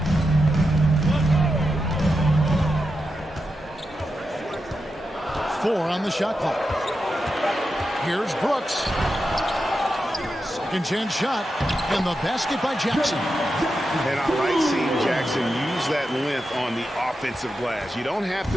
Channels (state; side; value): normal; both; correlation 0.88